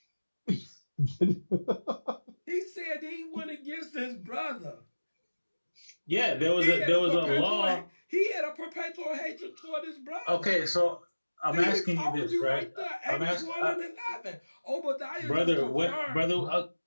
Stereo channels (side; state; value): both; inverted; correlation -1.00